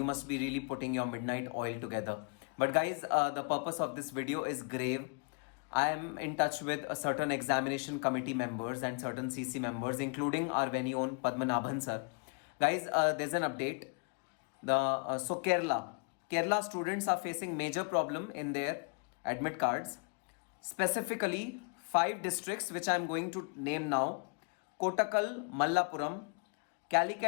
must be really putting your midnight oil together. But guys, the purpose of this video is grave. I am in touch with a certain examination committee members and certain CC members, including our very own Padmanabhan sir. Guys, there's an update. Kerala students are facing major problem in their admit cards. Specifically, 5 districts which I am going to name now: Kottakkal, Mallapuram,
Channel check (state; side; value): quieter; right; 39.3 dB